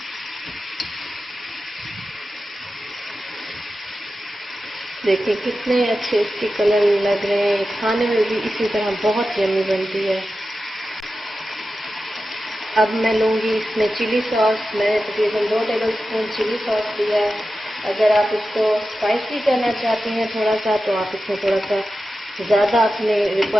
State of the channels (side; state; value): both; normal; correlation 0.92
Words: देखिए कितने अच्छे इसके कलर लग रहे हैं। खाने में भी इसी तरह बहुत यम्मी बनती है। अब मैं लूँगी इसमें चिली सॉस। मैंने तकरीबन 2 टेबलस्पून चिली सॉस लिया है। अगर आप इसको स्पाइसी करना चाहते हैं थोड़ा सा, तो आप इसमें थोड़ा सा ज़्यादा अपने